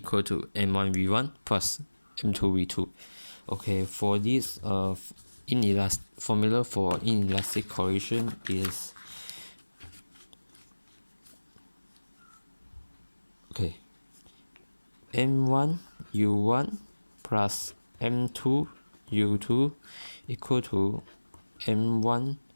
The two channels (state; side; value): inverted; both; correlation -1.00